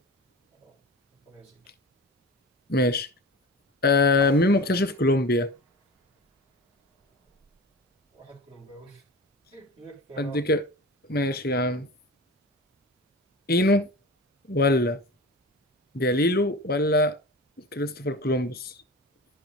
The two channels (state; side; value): normal; both; correlation 0.33